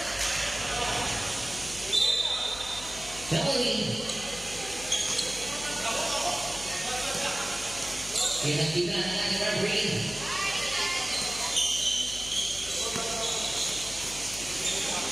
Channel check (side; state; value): left; noise; hum, 15 dB below the sound